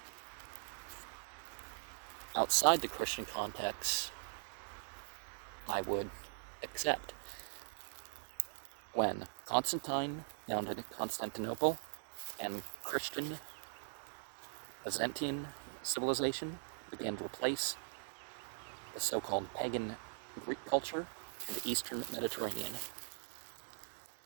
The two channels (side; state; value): left; silent; digital silence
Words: Outside the Christian context, I would accept. When Constantine founded Constantinople and Christian Byzantine civilization began to replace the so-called pagan Greek culture in the Eastern Mediterranean.